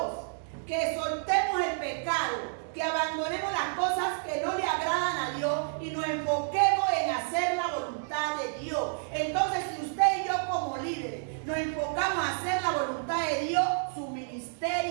que soltemos el pecado, que abandonemos las cosas que no le agradan a Dios y nos enfoquemos en hacer la voluntad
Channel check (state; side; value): silent; left; digital silence